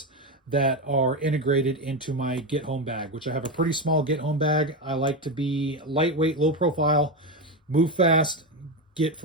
that are integrated into my get home bag, which I have a pretty small get home bag. I like to be lightweight, low profile, move fast, get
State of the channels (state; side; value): normal; both; correlation 0.13